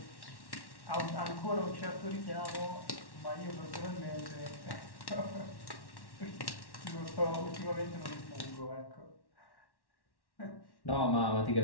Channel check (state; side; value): late; right; 1.1 ms